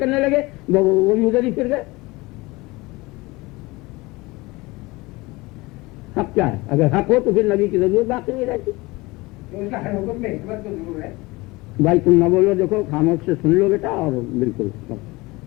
لگے، وہ بھی ادھر ہی پھر گئے۔ حق کیا ہے؟ اگر حق ہو تو پھر نبی کی ضرورت باقی نہیں رہتی۔ اس کا ہر حکم میں حکمت تو ضرور ہے۔ بھائی تم نہ بولو، دیکھو خاموش سے سن لو بیٹا، اور بالکل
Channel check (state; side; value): quieter; right; 22.5 dB